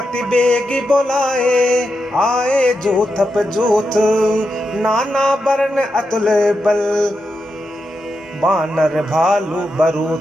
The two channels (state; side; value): normal; both; correlation 0.87